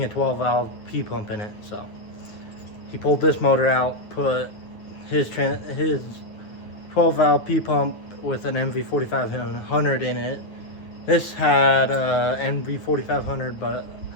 a 12 valve P pump in it. So he pulled this motor out, put his 12 valve P pump with an MV4500 in it. This had a MV4500, but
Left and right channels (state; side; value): late; right; 9.5 ms